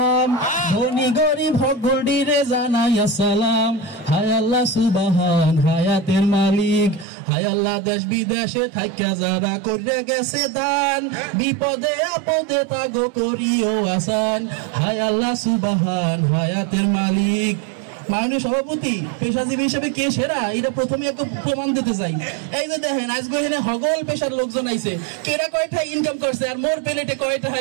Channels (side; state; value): left; drops out; at 7.1 s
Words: ধনী গরিব সকলরে জানাই আসসালাম। হায় আল্লাহ সুবহান হায়াতের মালিক, হায় আল্লাহ দেশ বিদেশে থাইকা যারা কইরা গেছে দান, বিপদে আপদে তাগো করিও আসান। হায় আল্লাহ সুবহান হায়াতের মালিক। মাননীয় সভাপতি, পেশাজীবী হিসেবে কে সেরা এটা প্রথমে একটা প্রমাণ দিতে চাই। এই যে দেখেন আজকে এখানে হগল পেশার লোকজন আইছে, কেরা কয়টা ইনকাম করছে আর মোর প্লেটে কয়টা